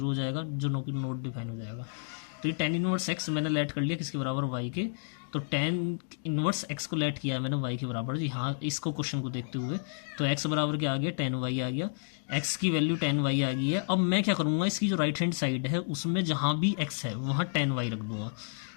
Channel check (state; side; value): silent; right; digital silence